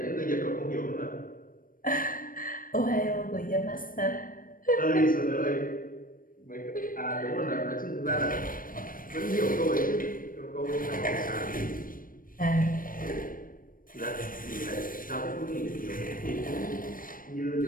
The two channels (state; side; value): late; right; 0.40 ms